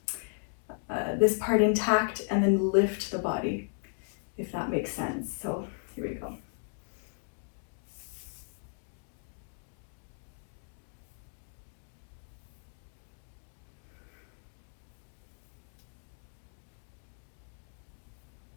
this part intact and then lift the body, if that makes sense. So here we go.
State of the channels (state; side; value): silent; right; digital silence